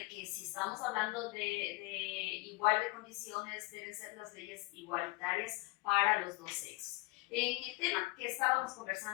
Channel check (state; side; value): quieter; right; 22.9 dB